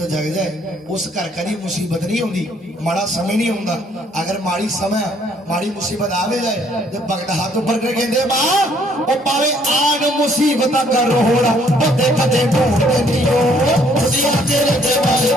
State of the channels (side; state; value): both; normal; correlation 0.64